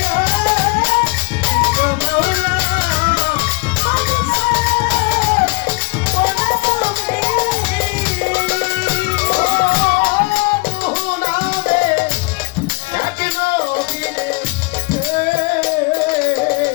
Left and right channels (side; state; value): right; quieter; 27.4 dB